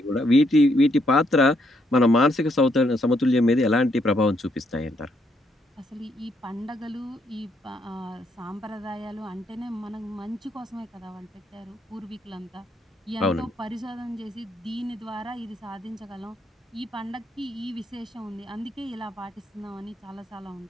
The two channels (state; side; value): normal; both; correlation 0.74